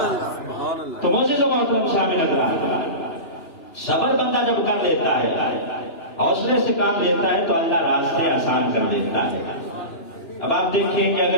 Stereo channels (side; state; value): right; late; 2.9 ms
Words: تو معزز و محترم شامل حضرات، صبر بندہ جب کر لیتا ہے، حوصلے سے کام لیتا ہے تو اللہ راستے آسان کر دیتا ہے. اب آپ دیکھیں کہ